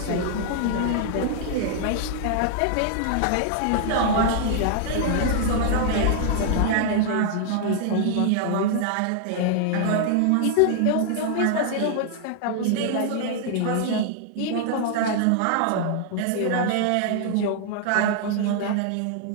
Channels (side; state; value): both; different; correlation 0.00